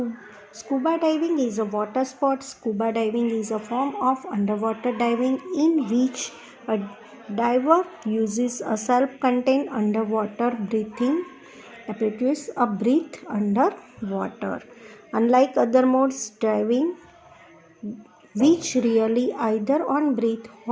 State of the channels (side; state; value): both; identical; correlation 1.00